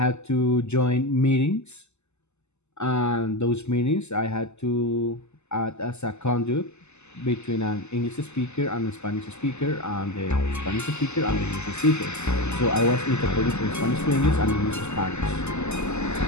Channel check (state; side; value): late; right; 0.82 ms